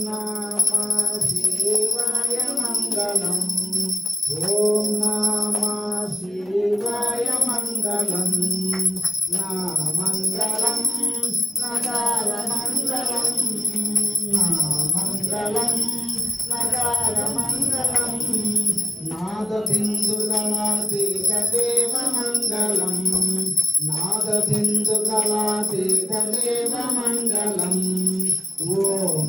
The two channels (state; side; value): normal; both; correlation 0.90